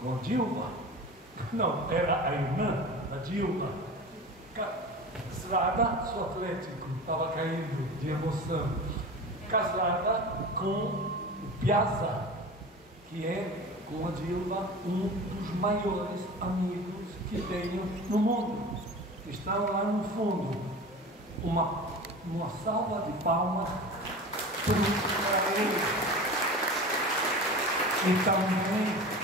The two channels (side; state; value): both; normal; correlation 0.34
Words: Dilma. Não, era a irmã da Dilma. Casada, sou atlético, estava caindo de emoção. Casada com o Piazza, que é, com a Dilma, um dos maiores amigos que tenho no mundo. Estão lá no fundo. Uma salva de palmas para ele. E também